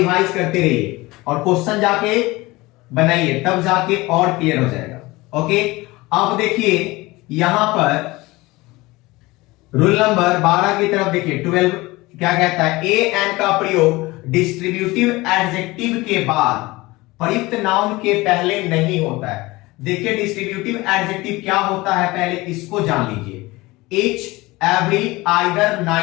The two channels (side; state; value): right; quieter; 21.2 dB